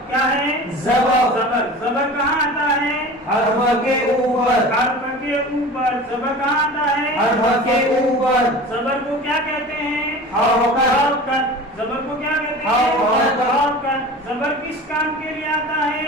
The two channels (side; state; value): both; normal; correlation 0.37